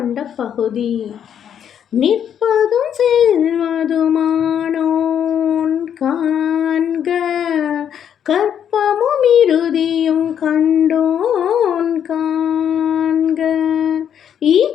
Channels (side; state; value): right; quieter; 9.0 dB